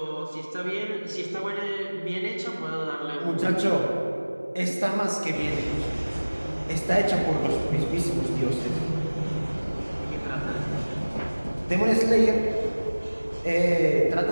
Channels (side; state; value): both; inverted; correlation -1.00